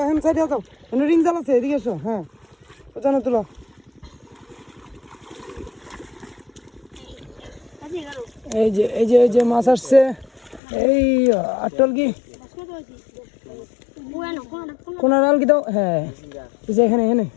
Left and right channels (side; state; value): right; drops out; at 10.6 s